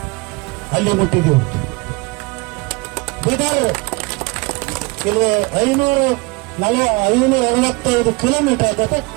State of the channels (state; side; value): quieter; left; 25.9 dB